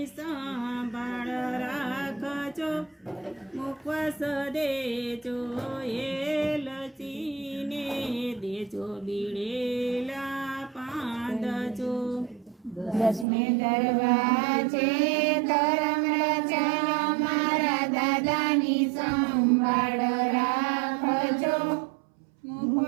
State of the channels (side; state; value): left; drops out; at 13.2 s